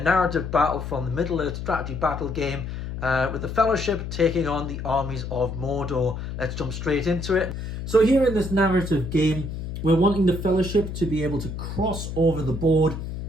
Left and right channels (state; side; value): noise; left; hum, 6 dB below the sound